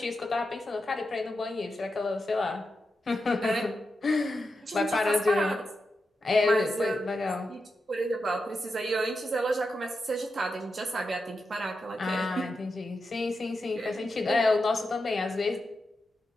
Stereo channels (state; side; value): normal; both; correlation 0.88